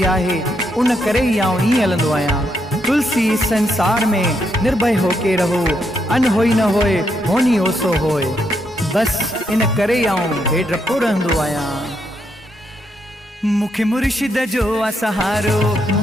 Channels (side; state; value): both; normal; correlation 0.78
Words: आहे, उन करे ई आउं ईअं हलंदो आहियां। तुलसी संसार में निर्भय होके रहो, अन होई न होए होनी ओसो होए। बसि इन करे आउं बेडरपो रहंदो आहियां। मुखे मुर्शिद जो आ सहारो,